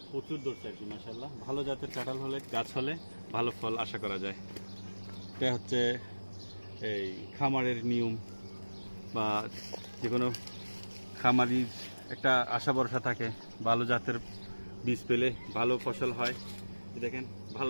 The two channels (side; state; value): both; inverted; correlation -1.00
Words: প্রচুর ধরছে আর কি মাশাআল্লাহ। ভালো জাতের কাঁঠাল হলে গাছ হলে ভালো ফল আশা করা যায়। এটা হচ্ছে এই খামারের নিয়ম, বা যে কোনো খামারির একটা আশা ভরসা থাকে ভালো জাতের বীজ পেলে ভালো ফসল হয়। দেখেন